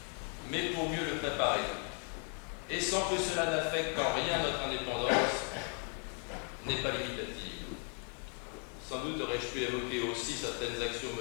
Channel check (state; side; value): quieter; right; 38.5 dB